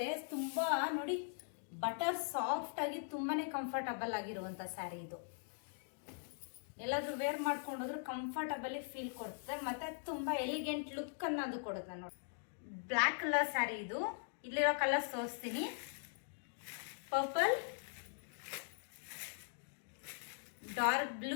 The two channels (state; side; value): silent; right; digital silence